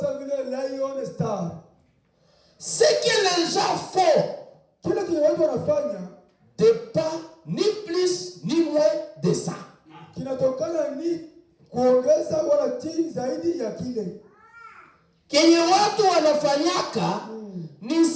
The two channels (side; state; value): both; identical; correlation 1.00